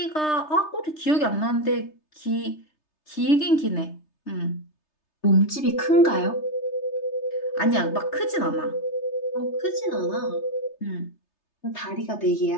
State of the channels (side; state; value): right; late; 3.3 ms